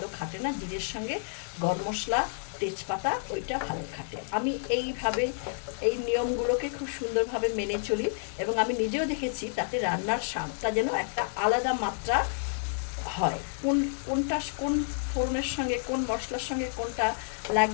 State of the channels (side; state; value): right; silent; 58 dB below the other